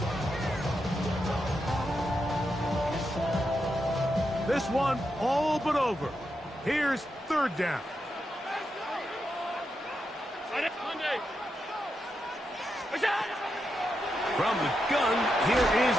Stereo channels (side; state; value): both; normal; correlation 0.85